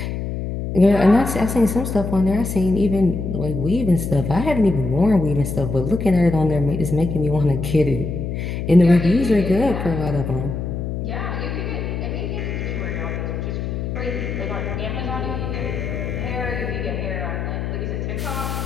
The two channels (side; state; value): left; noise; hum, 4 dB below the sound